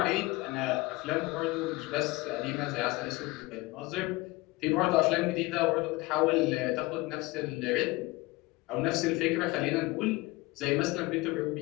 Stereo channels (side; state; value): right; quieter; 21.7 dB